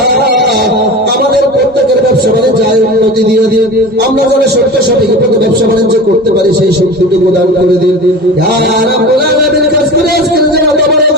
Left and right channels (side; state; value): both; normal; correlation 0.33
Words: আমাদের প্রত্যেকের ব্যবসা বাণিজ্য উন্নতি দিয়ে দিন আমরা যারা সত্য সঠিক পথে ব্যবসা বাণিজ্য করতে পারি সেই শক্তিটুকু দান করে দিন ইয়া রাব্বুল আলামিন কাজ করে আজকের যারা